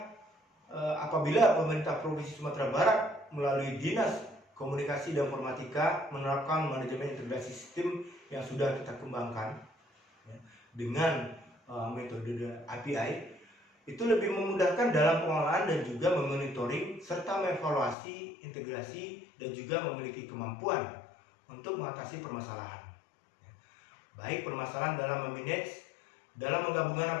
apabila pemerintah Provinsi Sumatera Barat melalui Dinas Komunikasi dan Informatika menerapkan manajemen integrasi sistem yang sudah kita kembangkan, ya, dengan metode API, itu lebih memudahkan dalam pengolahan dan juga memonitoring serta mengevaluasi integrasi dan juga memiliki kemampuan untuk mengatasi permasalahan, ya, baik permasalahan dalam memanage, dalam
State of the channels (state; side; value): drops out; right; at 17.9 s